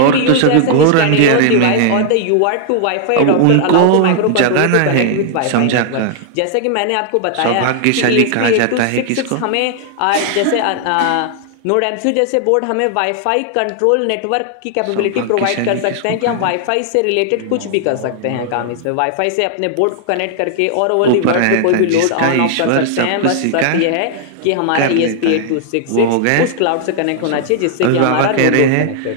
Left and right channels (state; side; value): different; both; correlation 0.00